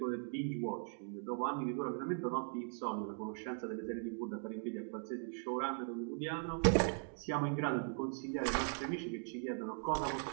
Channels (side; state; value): left; silent; 51 dB below the other